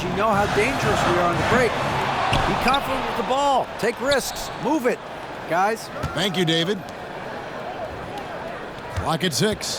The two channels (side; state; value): both; identical; correlation 1.00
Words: You know how dangerous we are on the break. Be confident with the ball. Take risks. Move it, guys. Thank you, David. Clock at